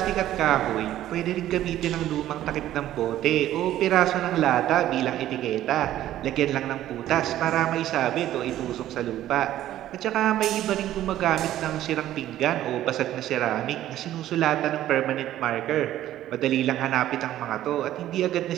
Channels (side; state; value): left; quieter; 13.1 dB